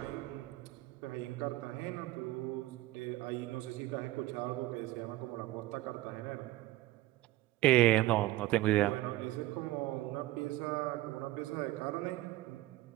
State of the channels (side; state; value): left; quieter; 17.2 dB